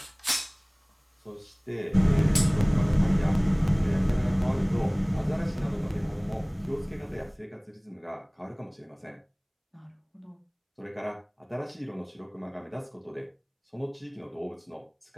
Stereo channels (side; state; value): both; identical; correlation 1.00